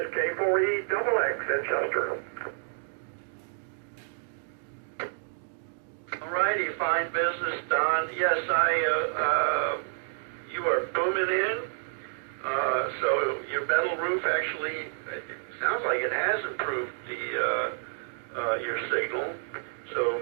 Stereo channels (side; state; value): left; silent; digital silence